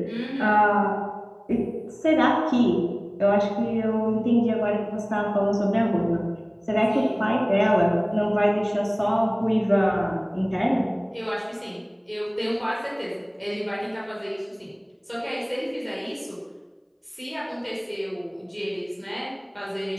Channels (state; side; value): identical; both; correlation 1.00